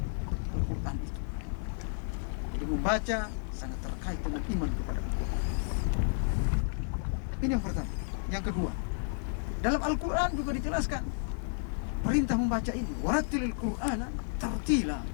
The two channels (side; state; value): right; silent; digital silence